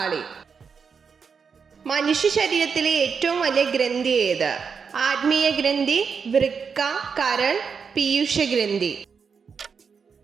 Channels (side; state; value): left; quieter; 6.0 dB